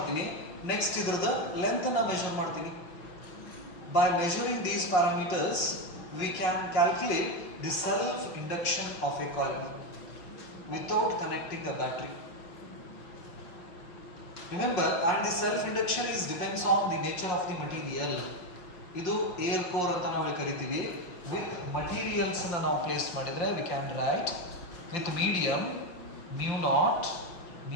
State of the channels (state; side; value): late; right; 5.6 ms